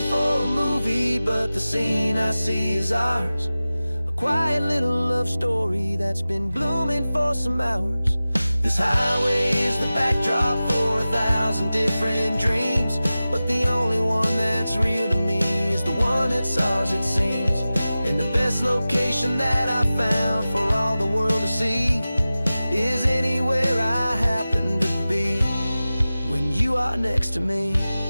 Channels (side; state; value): both; inverted; correlation -0.96